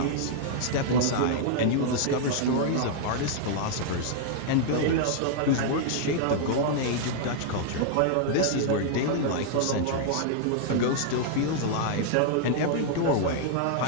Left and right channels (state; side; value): different; both; correlation -0.01